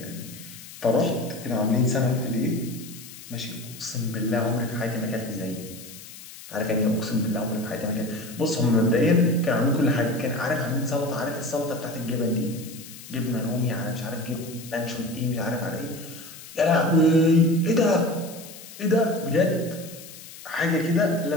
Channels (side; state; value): left; noise; hiss, 16 dB below the sound